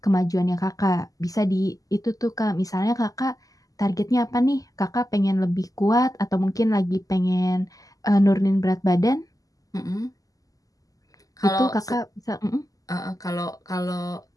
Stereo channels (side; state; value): right; late; 0.17 ms